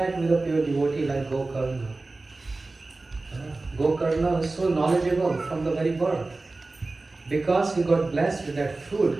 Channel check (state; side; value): quieter; left; 3.3 dB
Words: with a pure devotee like Gokarna. Gokarna is so knowledgeable from the very birth because he got blessed with that fruit